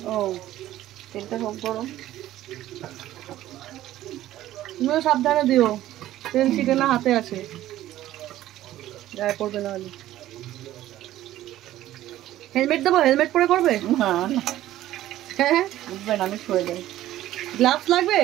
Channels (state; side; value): quieter; left; 14.0 dB